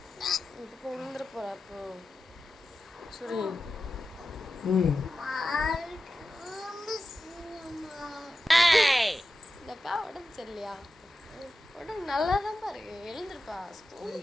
இப்போ விழுந்துட போகிறா. அப்போ சரி இந்தக்கா உடம்பு சரியில்லையா? உடம்பு நல்லா தான் பாருங்க. எழுந்துருப்பா,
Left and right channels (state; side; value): normal; both; correlation 0.92